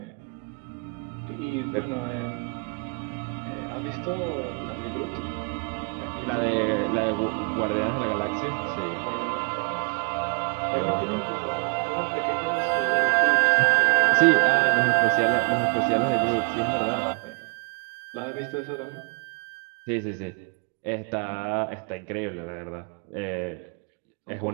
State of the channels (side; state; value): left; quieter; 38.9 dB